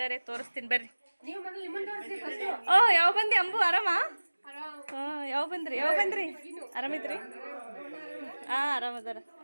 ತೋರಿಸ್ತೀನಿ ಬರ್ರಿ. ಯಾವ ಬಂದಿ ಅಂಬು? ಆರಾಮ? ಯಾವ ಬಂದ್ರಿ ಆರಾಮಿದ್ರಿ? ಆರಾಮದಾರ.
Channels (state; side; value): inverted; both; correlation -1.00